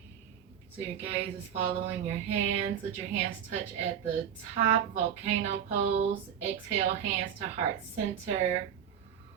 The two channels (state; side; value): quieter; left; 9.0 dB